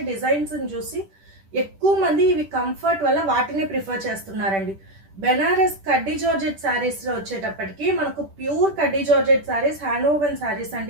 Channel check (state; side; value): late; left; 10 ms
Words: డిజైన్స్ని చూసి ఎక్కువ మంది ఇవి కంఫర్ట్ వల్ల వాటిని ప్రిఫర్ చేస్తున్నారండి. బెనారస్ కడ్డీ జార్జెట్ శారీస్ లో వచ్చేటప్పటికి మనకు ప్యూర్ కడ్డీ georgette saris, hand woven saris